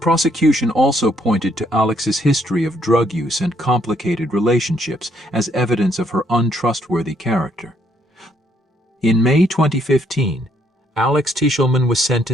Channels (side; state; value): both; normal; correlation 0.70